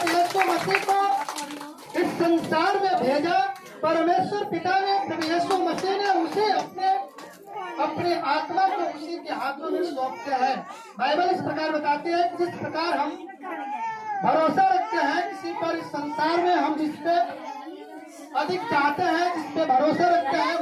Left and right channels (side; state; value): both; identical; correlation 1.00